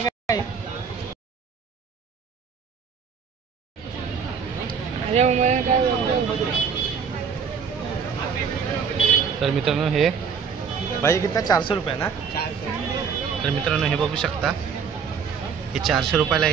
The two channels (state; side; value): quieter; left; 6.4 dB